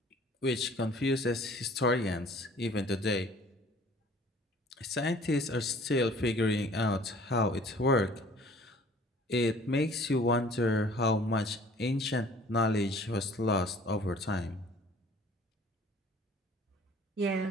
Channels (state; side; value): normal; both; correlation 0.52